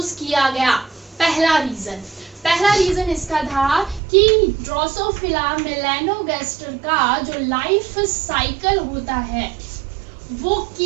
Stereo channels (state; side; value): drops out; left; at 4.0 s